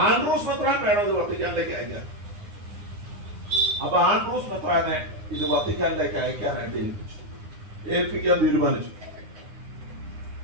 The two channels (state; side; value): late; left; 9.8 ms